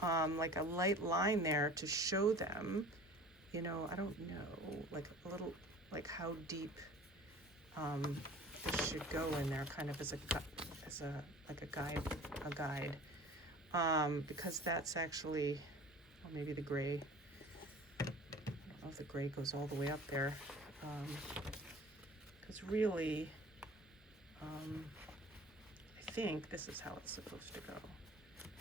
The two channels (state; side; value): normal; both; correlation 0.44